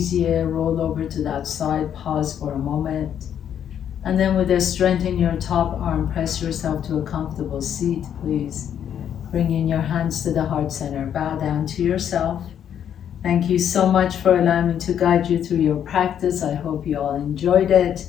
Roll over to that side, pause for a moment. And then with the strength in your top arm, press yourself to a comfortable seat, please. Bring in your hands to the heart center. Bow down to yourself. Thank you so much for allowing me to guide you through your practice. I hope you all enjoyed it,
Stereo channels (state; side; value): quieter; right; 9.3 dB